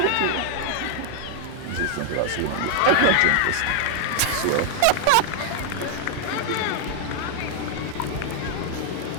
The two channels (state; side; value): different; both; correlation 0.00